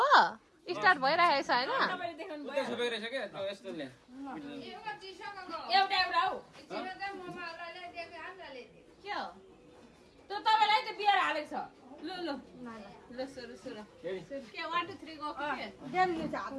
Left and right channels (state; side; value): identical; both; correlation 1.00